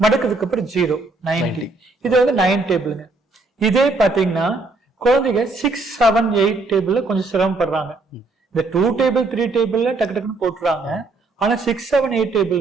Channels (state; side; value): quieter; left; 3.3 dB